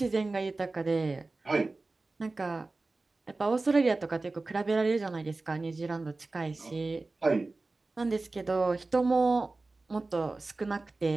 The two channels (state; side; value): quieter; left; 3.4 dB